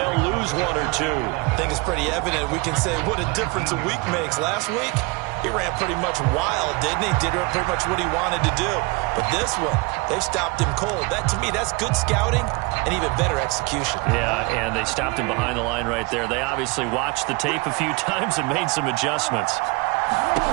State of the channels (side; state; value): left; quieter; 26.7 dB